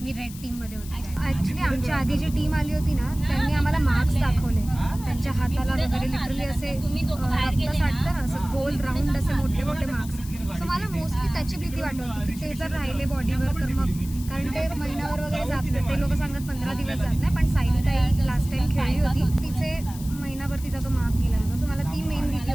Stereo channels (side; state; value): left; noise; hiss, 16 dB below the sound